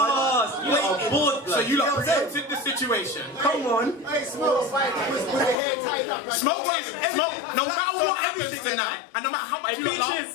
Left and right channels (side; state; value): right; drops out; at 5.6 s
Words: So you lot preempted the situation. Come on. Hey, Smoke, with the hair tied up. Smoke. No matter what happens tonight, and no matter how much you